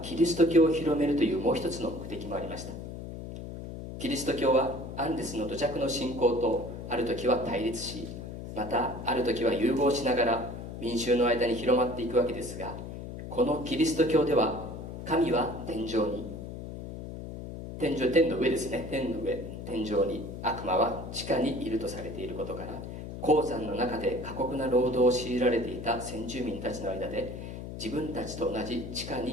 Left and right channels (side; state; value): left; noise; hum, 9 dB below the sound